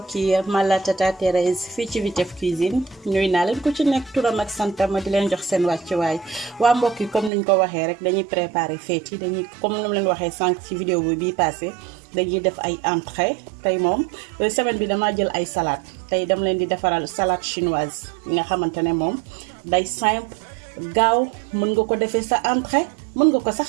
yi man la Tata Thérèse fii ci Vitef Cuisine nuyu naa leen ku ci nekk turam ak santam ma di leen jox seen wàccuwaay waa mbokk yi comme niñ ko waxee rek dañuy préparer fête yi dañuy comme ni mu leen waxee sànq ci vidéo bi bii passé dañuy def ay entrée tey moom semaine bi damaa jël ay salade tey dama leen di defaral salade chinoise yi nga xamante ne moom day simple gaaw mën nga ko defee sa entrée mën nga ko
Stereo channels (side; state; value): left; drops out; at 7.3 s